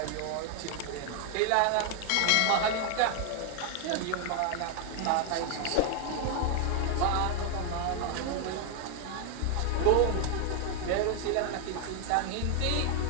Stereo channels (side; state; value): both; different; correlation 0.00